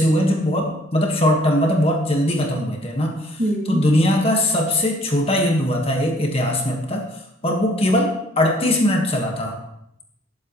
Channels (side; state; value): both; normal; correlation 0.59